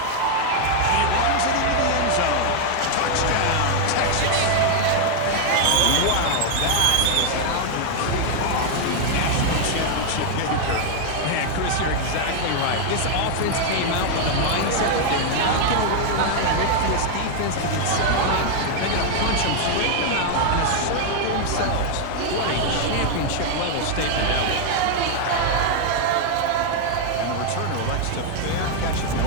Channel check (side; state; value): both; different; correlation 0.00